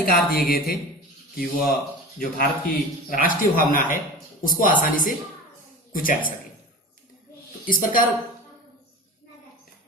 दिए गए थे कि वह जो भारत की राष्ट्रीय भावना है उसको आसानी से कुचल सके। तो इस प्रकार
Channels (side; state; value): both; normal; correlation 0.33